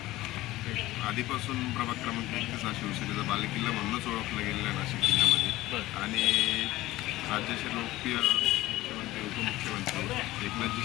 आधीपासून प्रभाग क्रमांक 31 हा शिवसेनेचा बालेकिल्ला म्हणूनच ओळखला गेलेला आहे नाशिक जिल्ह्यामध्ये। आणि राज्याचे लोकप्रिय मुख्यमंत्री उपमुख्यमंत्री एकनाथजी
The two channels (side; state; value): right; quieter; 17.3 dB